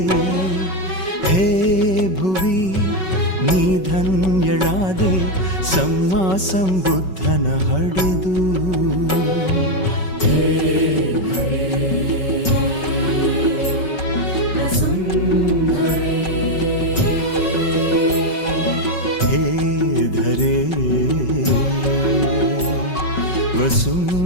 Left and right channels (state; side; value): late; right; 5.3 ms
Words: ಹೇ ಭುವಿ ನೀ ಧನ್ಯಳಾದೆ ಸಮ್ಮಾ ಸಂಬುದ್ಧನ ಹಡೆದು. ಹೇ ಧರೆ